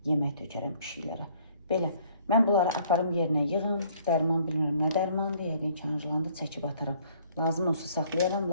yemək tökərəm pişiklərə. Belə. Mən bunları aparım yerinə yığım. Dərman bilmirəm nə dərmandır. Yəqin ki, Anjlanda çəkib ataram. Lazım olsa saxlayaram,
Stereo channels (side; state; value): both; inverted; correlation -0.60